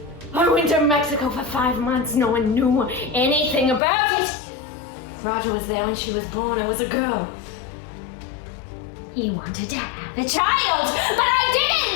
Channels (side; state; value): right; drops out; at 3.8 s